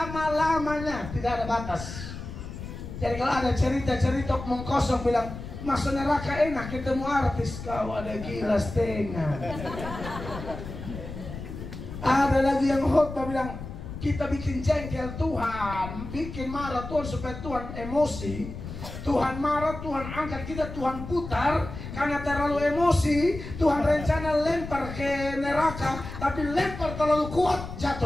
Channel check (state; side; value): noise; left; rumble, 10 dB below the sound